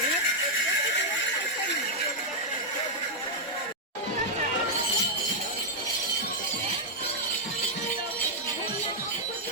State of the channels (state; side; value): normal; both; correlation -0.05